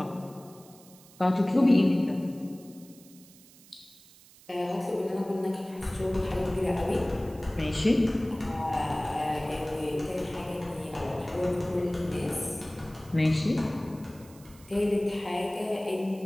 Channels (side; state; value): right; noise; hiss, 24 dB below the sound